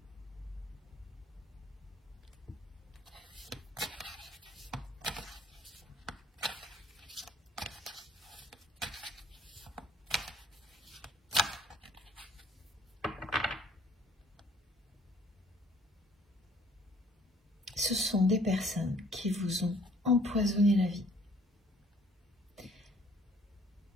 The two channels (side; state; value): both; normal; correlation 0.59